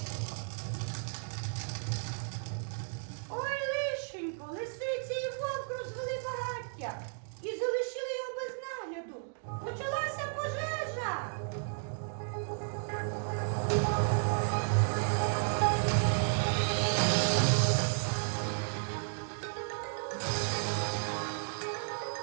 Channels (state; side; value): silent; left; digital silence